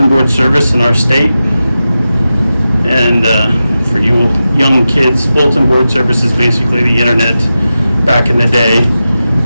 board service in our state. And for you young kids, bulletin board service is basically the internet back in the day,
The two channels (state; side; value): inverted; both; correlation -0.92